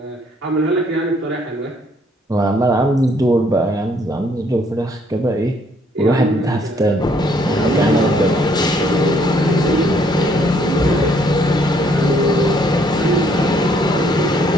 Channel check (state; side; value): normal; both; correlation 0.66